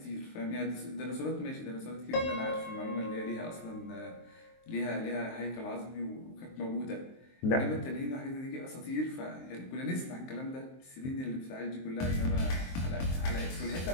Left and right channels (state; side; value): late; right; 23 ms